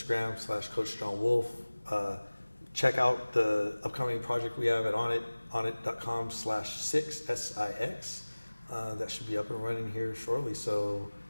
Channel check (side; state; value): both; inverted; correlation -1.00